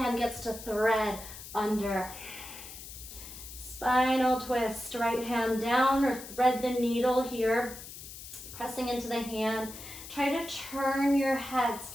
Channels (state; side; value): noise; left; hiss, 13 dB below the sound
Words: gets to thread under. Spinal twist. Right hand down or thread the needle here. Pressing into the hand. Try to turn your head